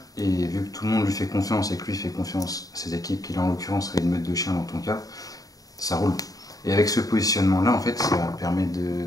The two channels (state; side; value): late; right; 0.18 ms